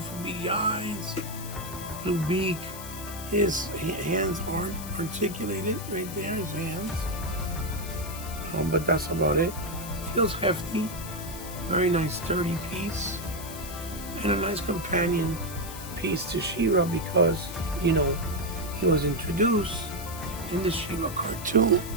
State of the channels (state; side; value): noise; left; hiss, 12 dB below the sound